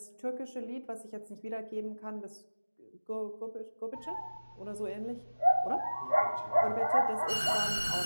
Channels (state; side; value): inverted; both; correlation -1.00